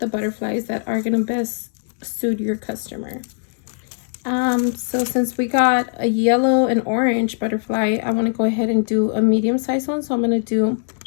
butterflies that are gonna best suit your customer. So since we got a yellow and orange butterfly, I want to go ahead and do a medium size one. So I'm going to do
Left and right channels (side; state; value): right; silent; digital silence